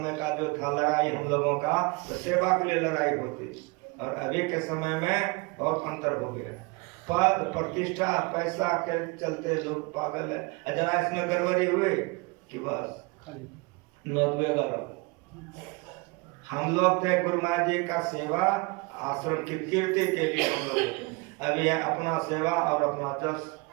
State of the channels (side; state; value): left; quieter; 27.4 dB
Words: का जो था लड़ाई हम लोगों का, तो सेवा के लिए लड़ाई होती, और अभी के समय में बहुत अंतर हो गया। पद प्रतिष्ठा पैसा के चलते लोग पागल है। जरा इसमें गड़बड़ी हुई कि बस नोटवे करो। हम लोग थे गुरु महाराज जी का सेवा आश्रम की कीर्ति के लिए, हम लोग अभी है अपना सेवा और अपना जस,